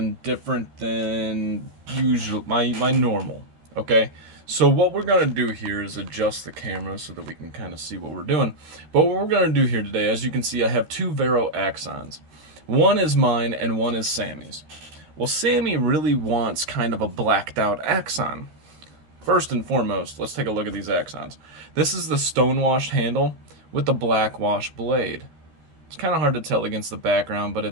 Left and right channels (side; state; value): left; late; 13 ms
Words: different than usual, my normal, okay? So what we're going to do here is adjust the camera so that we can kind of see what we're doing. But what we're going to do here today, as you can see, I have two Vero axons. One is mine and one is Sammy's. Well, Sammy really wants kind of a blacked out axon. First and foremost, let's take a look at these axons. This is the stonewashed handle with the black wash blade. It's kind of hard to tell against the background, but